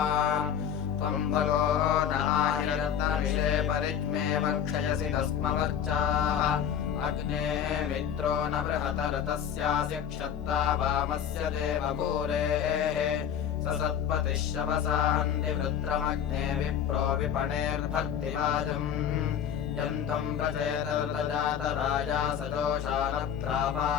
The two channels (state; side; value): quieter; right; 8.8 dB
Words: त्वं भगो नाहिरत्नविषे परिज्ञे वक्षयसि तस्मवर्चाः अग्ने मित्रो न बृहतरतस्यास्य क्षत्ता वामस्य देवपूरेः स सत्पतिः शवसाहन्ति वृत्रमग्ने विप्रो विपणेर्भर्तिवाजम् यन्तं प्रचेतर्तजातराजा